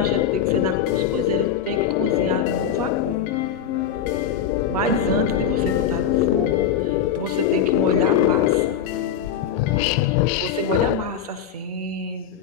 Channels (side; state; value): right; quieter; 8.2 dB